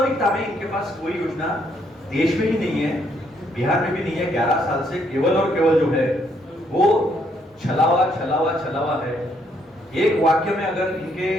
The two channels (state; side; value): normal; both; correlation 0.71